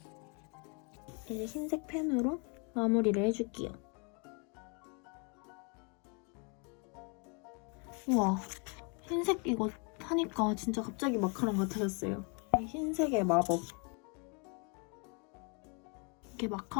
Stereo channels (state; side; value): quieter; right; 35.0 dB